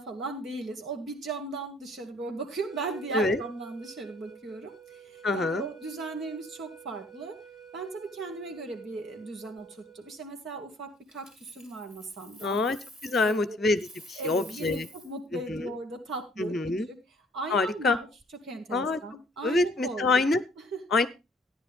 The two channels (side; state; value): both; normal; correlation 0.59